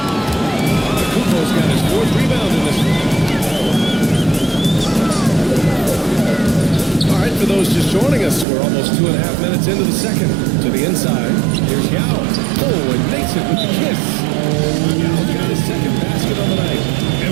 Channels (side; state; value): left; drops out; at 8.5 s